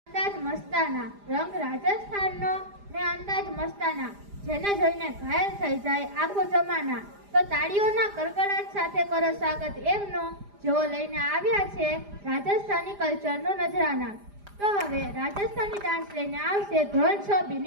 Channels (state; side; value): late; left; 4.9 ms